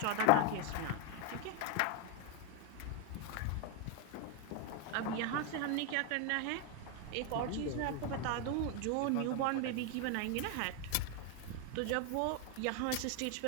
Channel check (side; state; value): both; different; correlation 0.01